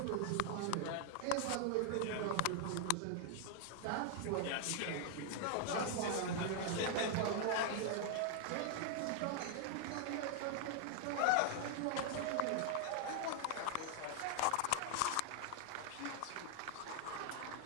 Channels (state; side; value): different; both; correlation 0.00